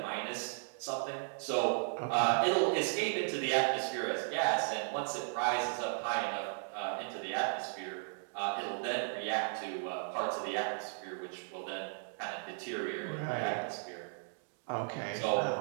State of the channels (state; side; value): silent; left; digital silence